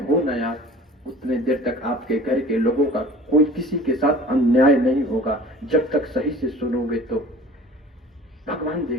हो ना यार, उतने देर तक आपके घर के लोगों का कोई किसी के साथ अन्याय नहीं होगा। जब तक सही से सुनोगे तो भगवान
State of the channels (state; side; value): normal; both; correlation 0.45